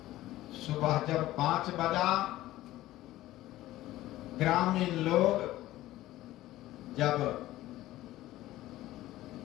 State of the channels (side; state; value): right; quieter; 15.7 dB